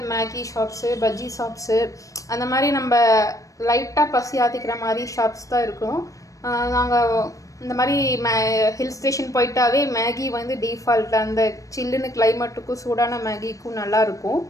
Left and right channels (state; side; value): late; right; 0.16 ms